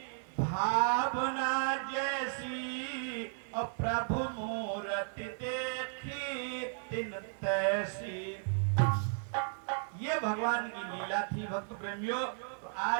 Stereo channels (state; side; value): silent; left; 55 dB below the other